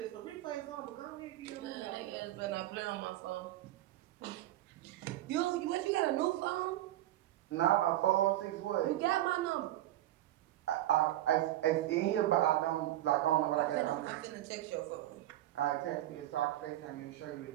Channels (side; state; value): left; quieter; 14.4 dB